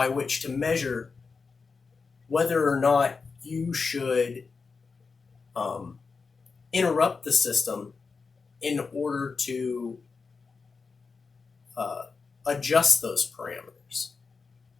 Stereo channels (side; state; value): right; quieter; 4.8 dB